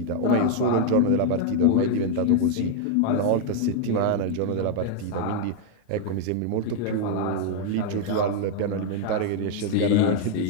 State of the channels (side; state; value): both; different; correlation 0.00